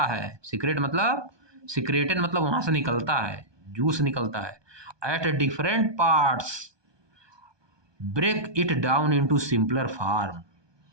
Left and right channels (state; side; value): late; left; 1.2 ms